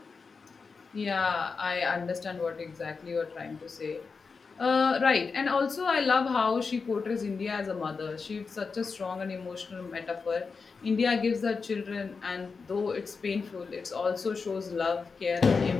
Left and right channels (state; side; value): quieter; right; 4.9 dB